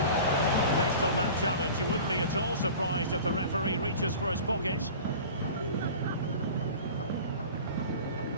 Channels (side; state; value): both; inverted; correlation -0.39